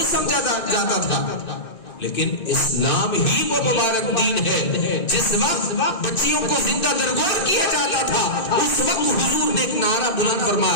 سمجھا جاتا تھا. لیکن اسلام ہی وہ مبارک دین ہے جس وقت بچیوں کو زندہ درگور کیا جاتا تھا اس وقت حضور نے ایک نعرہ بلند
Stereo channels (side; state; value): right; late; 2.6 ms